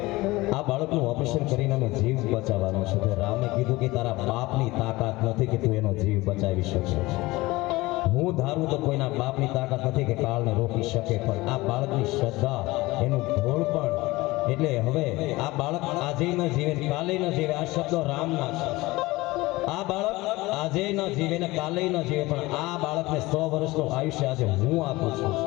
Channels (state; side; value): quieter; right; 20.5 dB